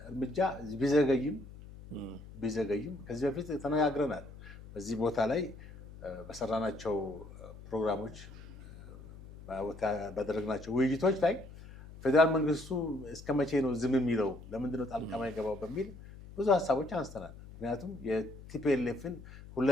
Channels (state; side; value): noise; left; hum, 16 dB below the sound